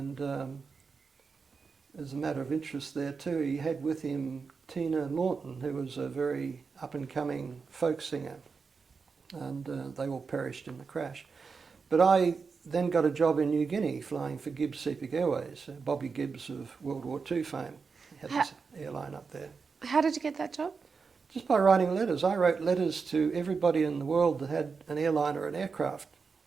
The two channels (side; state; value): left; quieter; 5.1 dB